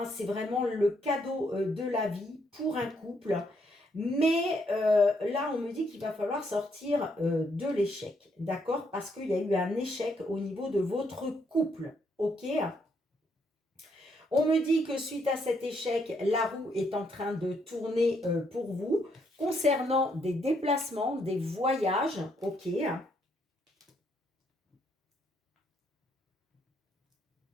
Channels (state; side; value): normal; both; correlation 0.73